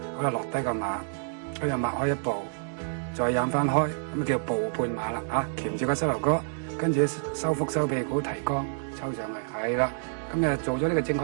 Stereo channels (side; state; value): left; silent; digital silence